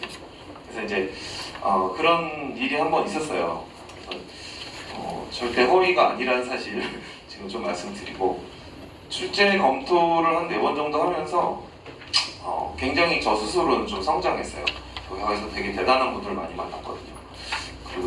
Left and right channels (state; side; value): identical; both; correlation 1.00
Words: 그래서 이제 그런 일이 한번 있었어요. 그래서 절대 허위가 아니라는 사실을 지금 좀 말씀드리고, 출제 검토를 한 4번 정도 하면서 굉장히 저 스스로는 좀 성장했어요. 거기서 되게 대단한 분들 많이 만났거든요.